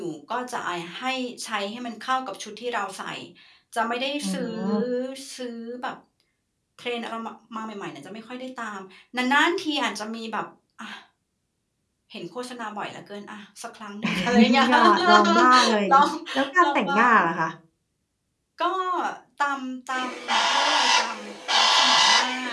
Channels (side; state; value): both; identical; correlation 1.00